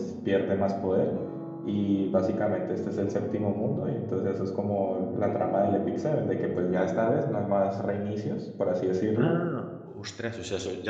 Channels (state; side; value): identical; both; correlation 1.00